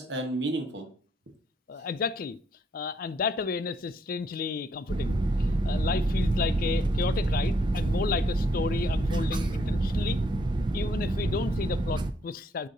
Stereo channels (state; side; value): normal; both; correlation 0.71